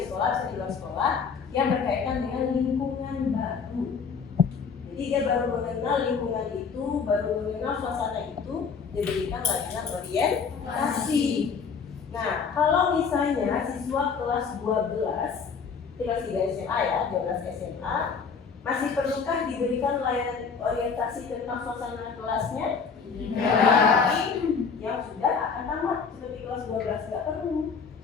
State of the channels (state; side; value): quieter; right; 5.7 dB